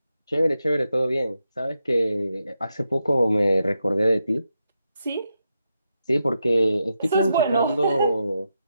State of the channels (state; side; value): inverted; both; correlation -0.85